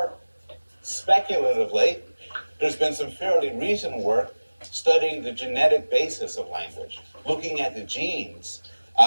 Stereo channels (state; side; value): inverted; both; correlation -1.00